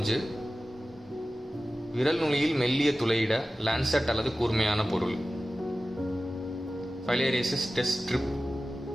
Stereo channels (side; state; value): both; normal; correlation 0.95